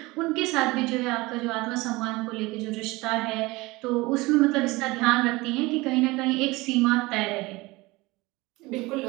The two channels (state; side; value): quieter; left; 21.9 dB